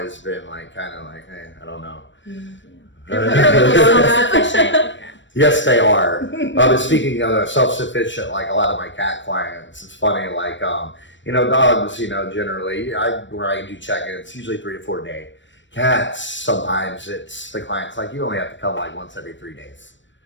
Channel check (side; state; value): right; late; 0.54 ms